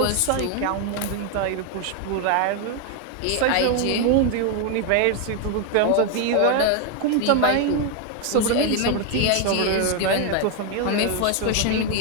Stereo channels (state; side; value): different; both; correlation 0.01